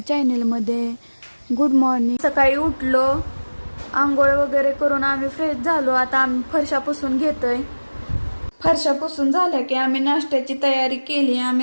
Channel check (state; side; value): inverted; both; correlation -1.00